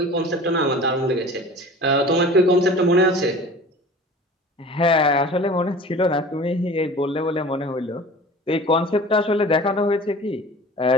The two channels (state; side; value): normal; both; correlation 0.41